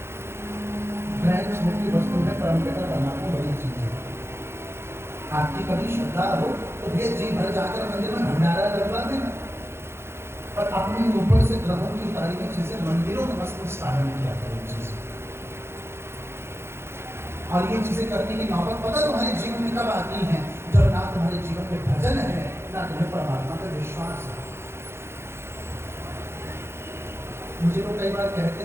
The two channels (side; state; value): left; late; 0.12 ms